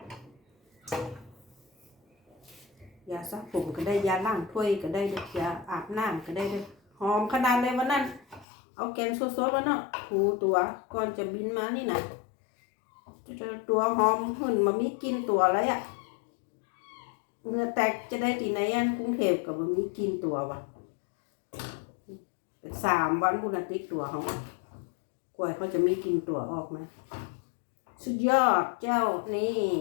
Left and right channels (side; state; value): right; drops out; at 8.5 s